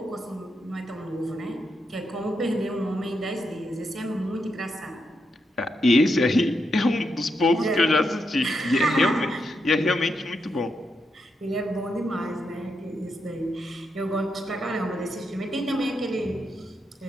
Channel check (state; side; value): normal; both; correlation 0.83